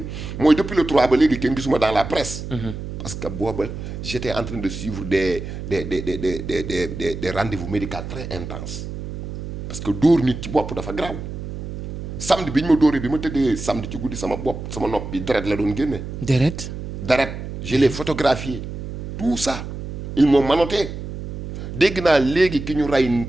mooy depuis le 3 ba léegi kenn gisuma dans la presse. parce que booba j'étais en train de suivre des rendez-vous médicaux très intenses parce que dóor nit ci bopp dafa grave samedi bi ñu ma dóoree bi ma tëddee samedi ci guddi sama nopp bi deret la doon génne. deret je l'ai photographié tout ça ils m'ont menotté dégg naa léegi ki ñu rey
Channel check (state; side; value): noise; right; hum, 8 dB below the sound